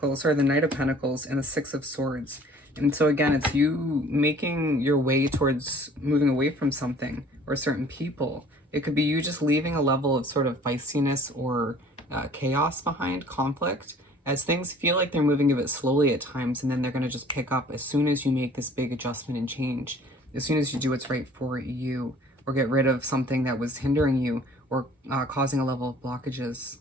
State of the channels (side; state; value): both; normal; correlation 0.52